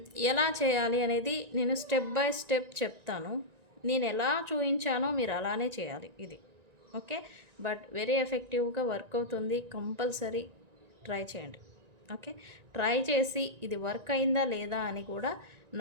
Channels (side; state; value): left; late; 1.9 ms